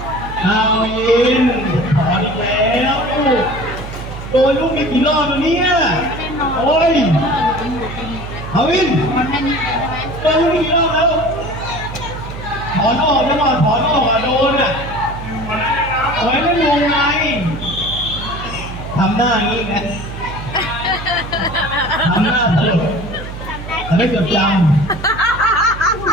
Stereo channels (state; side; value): noise; right; hum, 10 dB below the sound